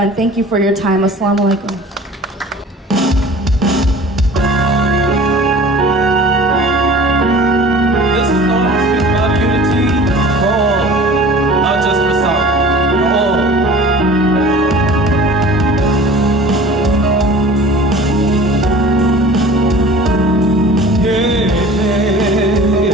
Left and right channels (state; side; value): normal; both; correlation 0.43